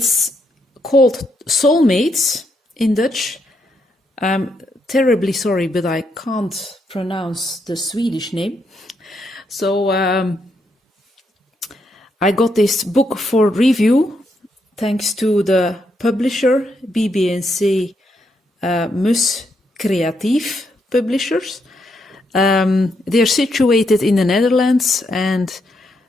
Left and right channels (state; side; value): normal; both; correlation 0.78